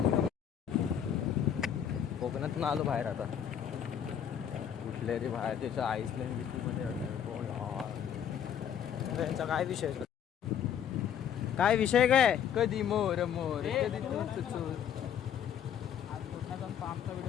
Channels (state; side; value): quieter; right; 9.0 dB